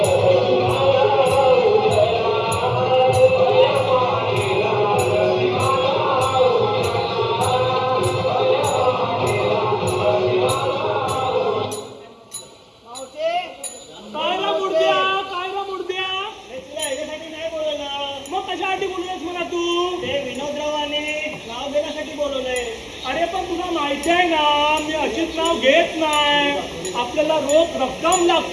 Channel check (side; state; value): both; identical; correlation 1.00